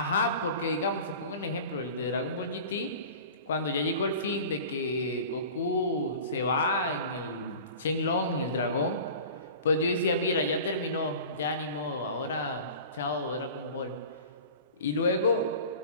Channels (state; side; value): inverted; both; correlation -0.39